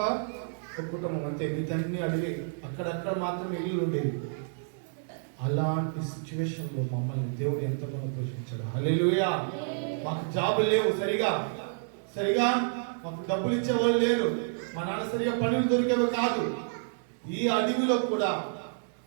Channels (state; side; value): silent; left; digital silence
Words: ఒక కుటుంబం, అంతే. వీటన్ని అడిగి అక్కడక్కడ మాత్రమే ఇల్లు ఉండేది. అలాంటి సిచ్యువేషన్లో మమ్మల్ని దేవుడు ఎంతగానో పోషించాడు. హల్లెలూయా. మాకు జాబులు లేవు సరిగా మాకు డబ్బులు ఇచ్చేవాళ్ళు లేరు. మా నాన్న సరిగా పనులు దొరికేవి కాదు. ఈ అడవిలో కూడా